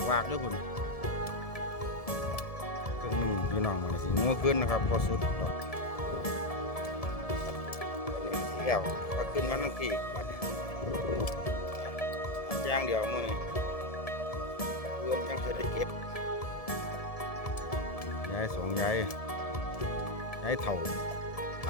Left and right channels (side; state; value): right; late; 1.7 ms